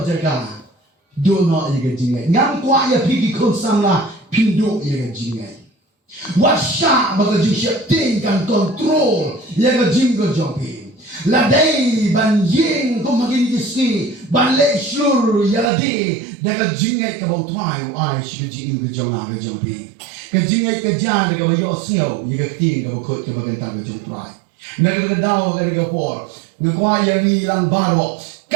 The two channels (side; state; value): left; drops out; at 15.7 s